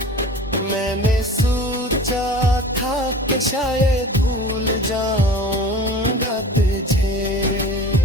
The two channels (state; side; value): normal; both; correlation 0.39